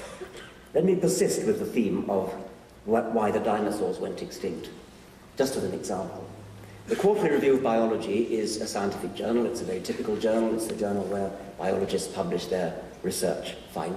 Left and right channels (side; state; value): both; identical; correlation 1.00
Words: Let me persist with the theme of why the dinosaurs went extinct, just as an example. The Quarterly Review of Biology is a scientific journal. It's a very typical journal. It's the journal where biologists publish their research